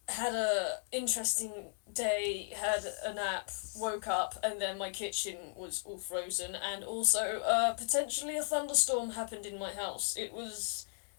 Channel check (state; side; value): silent; right; digital silence